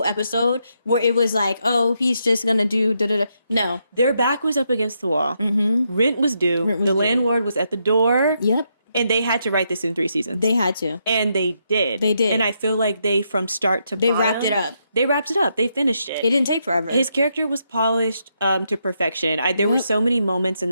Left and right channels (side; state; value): both; inverted; correlation -0.79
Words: episode where it was like, oh, he's just going to do da-da-da. No. Their back was up against the wall. Rent was due. The landlord was at the door. Yep. And they had to write this in 3 seasons. They had to. And they did. They did. And I feel like they, from start to bottom, wrapped it up. They wrapped it up. They finished it. It didn't take forever. His character was polished to perfection. There were so many moments in